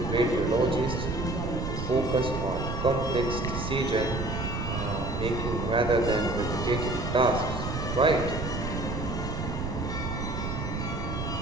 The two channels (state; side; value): noise; right; rumble, 4 dB below the sound